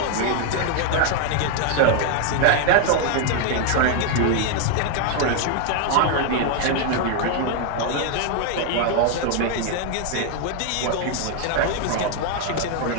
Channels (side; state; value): both; different; correlation 0.00